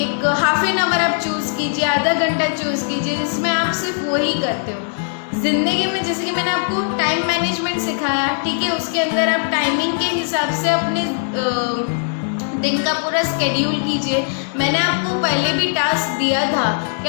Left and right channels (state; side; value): silent; right; 66 dB below the other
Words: हाफ एन आवर आप चूज़ कीजिए, आधा घंटा चूज़ कीजिए जिसमें आप सिर्फ वही करते हो। ज़िंदगी में जैसे कि मैंने आपको टाइम मैनेजमेंट सिखाया, ठीक है, उसके अंदर आप टाइमिंग के हिसाब से अपने दिन का पूरा स्केड्यूल कीजिए। मैंने आपको पहले भी टास्क दिया था कि